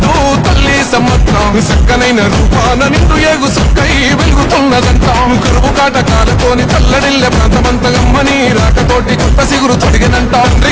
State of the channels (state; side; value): identical; both; correlation 1.00